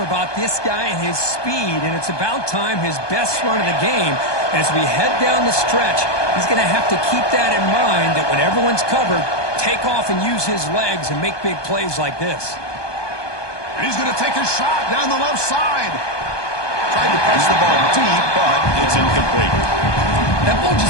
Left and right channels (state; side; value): late; right; 1.2 ms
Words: about this guy and his speed, and it's about time his best run of the game. And as we head down the stretch, he's going to have to keep that in mind, that when everyone's covered, take off and use his legs and make big plays like this. And he's going to take a shot down the left side. Tried to press the ball deep, but it's incomplete. That ball